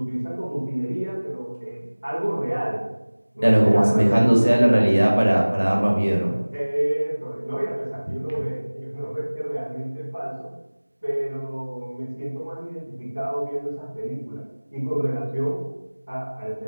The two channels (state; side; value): inverted; both; correlation -1.00